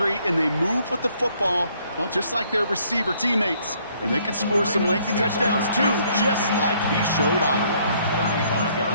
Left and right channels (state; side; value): inverted; both; correlation -0.65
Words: and they move with the football, well, just like their receiver teammates. And they can score some lengthy touchdowns, too, just like he showed off. 35-yard